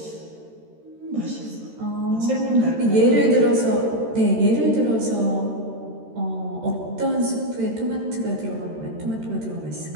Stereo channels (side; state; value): left; late; 13 ms